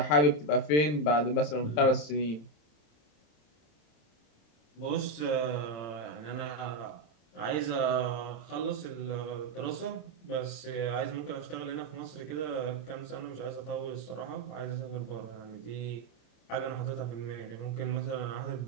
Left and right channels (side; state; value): right; late; 27 ms